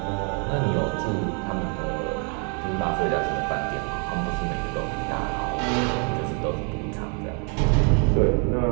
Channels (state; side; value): quieter; left; 38.2 dB